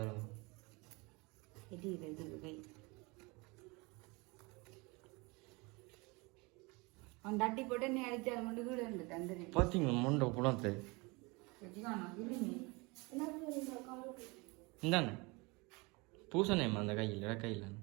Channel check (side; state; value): left; quieter; 26.7 dB